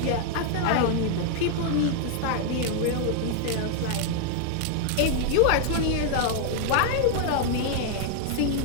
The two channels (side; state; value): both; different; correlation 0.00